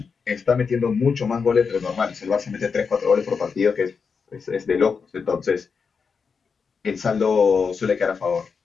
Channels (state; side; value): quieter; right; 5.6 dB